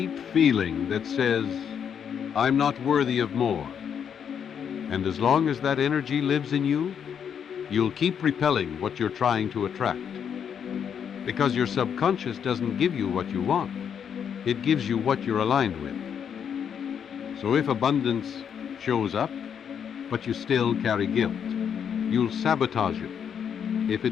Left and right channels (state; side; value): quieter; right; 7.9 dB